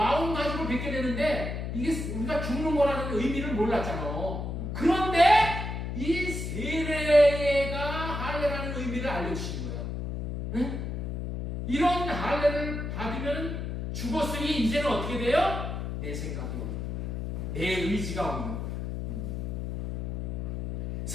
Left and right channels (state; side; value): noise; left; hum, 4 dB below the sound